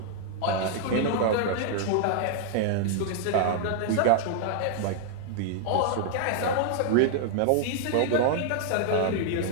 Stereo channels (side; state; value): both; different; correlation 0.00